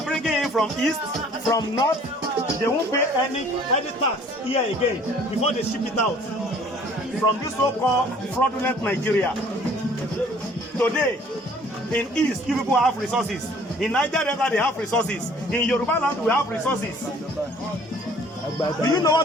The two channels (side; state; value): both; normal; correlation 0.55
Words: bringing in from east, from north, they won't pay any tax here again before they ship it out from this so-called fraudulent Nigeria. Today, in East, you people have resources. In Niger Delta, they have resources. In Yoruba land, we have resources. Do you know